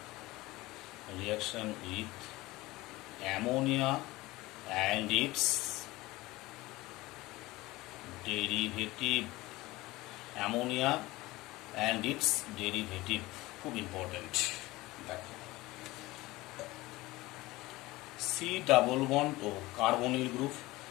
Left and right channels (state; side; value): quieter; right; 19.7 dB